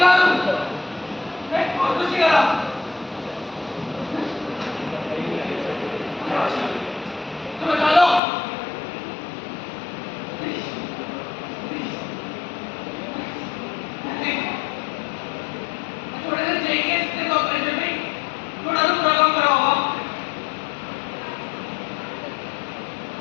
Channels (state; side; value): drops out; right; at 8.2 s